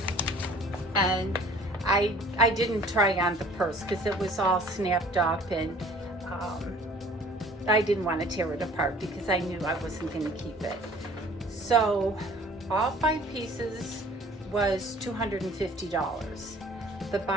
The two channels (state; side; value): normal; both; correlation 0.51